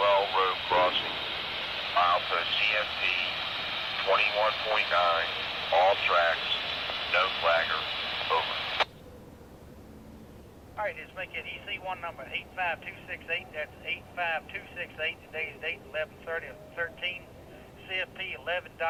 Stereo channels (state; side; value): identical; both; correlation 1.00